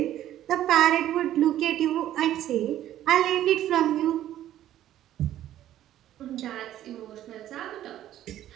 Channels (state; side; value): quieter; left; 12.5 dB